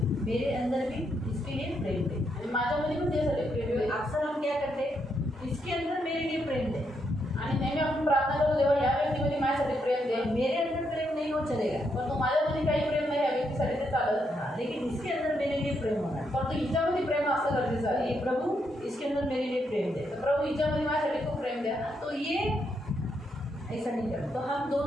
मेरे अंदर भी इसके लिए प्रेम दे. आणि माझ्यामध्ये पण त्यासाठी प्रेम दे. अक्सर हम क्या करते हैं, इसके अंदर मेरे लिए प्रेम दे. आणि नेहमी आपण प्रार्थना करू देवा या व्यक्तीमध्ये माझ्यासाठी प्रेम दे. मेरे अंदर प्रेम नहीं हो चलेगा, परंतु माझ्यामध्ये काही प्रेम नाही या व्यक्तीसाठी ते चालत. हाँ, लेकिन इसके अंदर मेरे लिए प्रेम होना. परंतु हिच्यामध्ये प्रेम असं गरजेचं आहे. ये प्रभु इसके अंदर मेरे लिए प्रेम दे. प्रभू हिच्यामध्ये माझ्यासाठी खूप प्रेम द्या. तो ये ऐसा नहीं करना. तो हम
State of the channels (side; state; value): both; normal; correlation 0.78